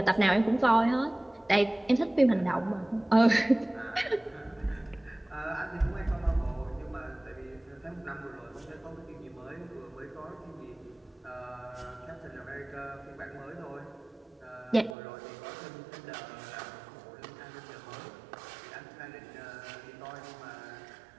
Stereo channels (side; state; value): left; drops out; at 15.0 s